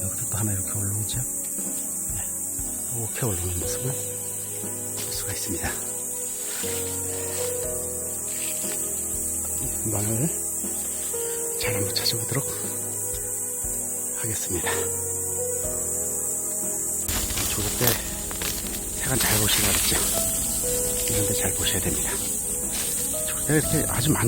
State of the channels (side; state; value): both; identical; correlation 1.00